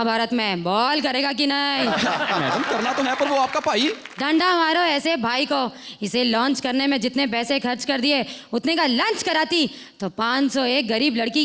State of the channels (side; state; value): both; identical; correlation 1.00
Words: में बॉल करेगा कि नहीं? मैडम करना तो है, पर वो आपका भाई। डंडा मारो ऐसे भाई को। इसे लॉन्च करने में जितने पैसे खर्च कर दिए उतने का लंच कराती तो 501 गरीब